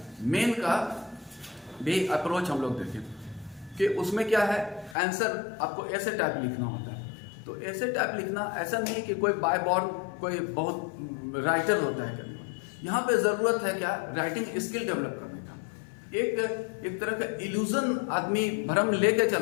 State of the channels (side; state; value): right; drops out; at 5.0 s